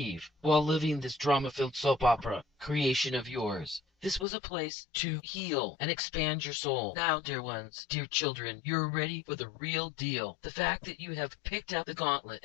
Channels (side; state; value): right; drops out; at 4.2 s